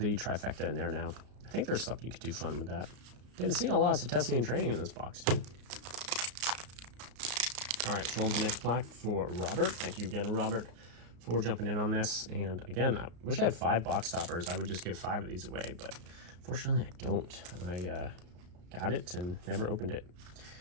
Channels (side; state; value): left; late; 34 ms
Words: trifecta in there now. I think there's something you could do fun with that. Didn't see a lot of testing and training in this box too. All right, show the next pack for Robert. Thank you again, Robert, for jumping in on this. And again, I wish I had 5 box toppers. I would just give 5 of these away, but fortunately I don't. I got it and never opened it.